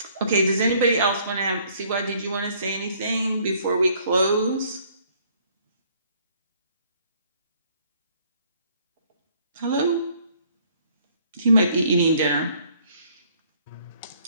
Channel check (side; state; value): both; inverted; correlation -0.62